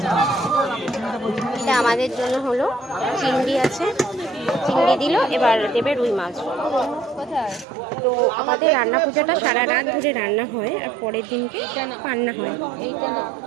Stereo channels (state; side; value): drops out; left; at 7.7 s